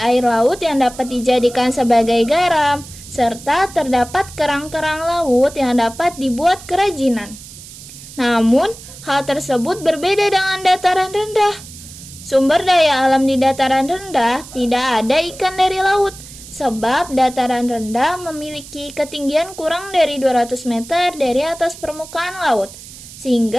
air laut yang dapat dijadikan sebagai garam, serta terdapat kerang-kerang laut yang dapat dibuat kerajinan. Namun, hal tersebut berbeda dengan dataran rendah. Sumber daya alam di dataran rendah tidak ada ikan dari laut, sebab dataran rendah memiliki ketinggian kurang dari 200 meter dari atas permukaan laut,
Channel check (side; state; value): right; noise; hiss, 16 dB below the sound